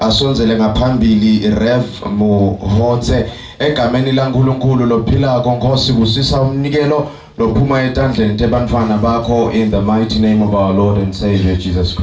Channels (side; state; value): both; identical; correlation 1.00